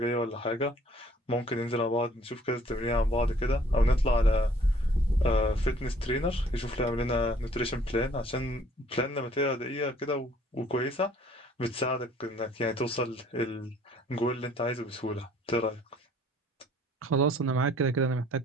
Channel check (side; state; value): both; normal; correlation 0.58